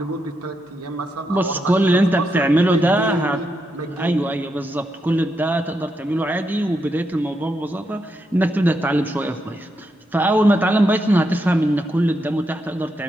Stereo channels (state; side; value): normal; both; correlation 0.82